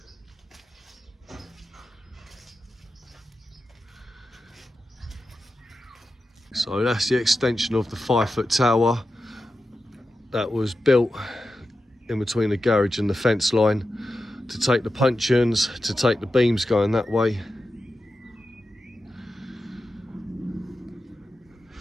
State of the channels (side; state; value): both; normal; correlation 0.91